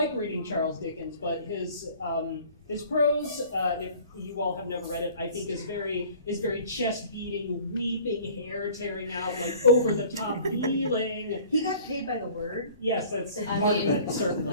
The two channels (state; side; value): inverted; both; correlation -0.48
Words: reading Charles Dickens, but his prose, if you all have never read it, I think is very chest beating, weeping, hair tearing out, like over the top feeling. he got paid by the word. Yes, that's part of it,